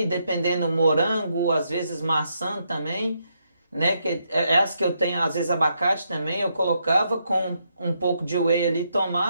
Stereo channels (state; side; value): inverted; both; correlation -0.79